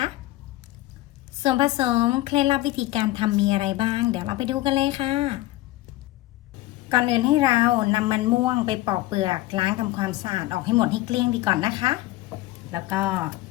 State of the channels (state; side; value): quieter; right; 17.3 dB